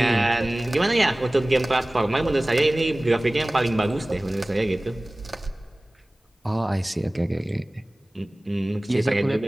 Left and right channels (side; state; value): both; normal; correlation 0.98